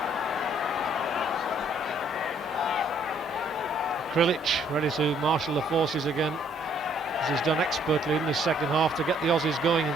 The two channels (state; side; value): normal; both; correlation 0.65